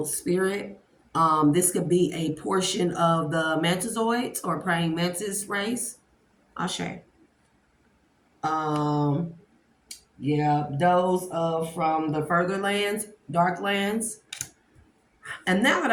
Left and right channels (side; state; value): both; identical; correlation 1.00